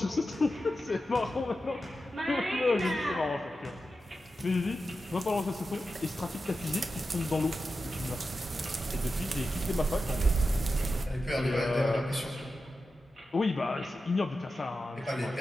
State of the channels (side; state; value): both; normal; correlation 0.91